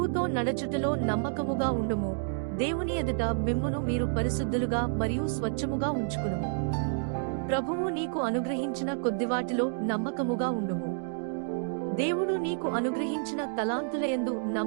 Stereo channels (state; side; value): silent; left; digital silence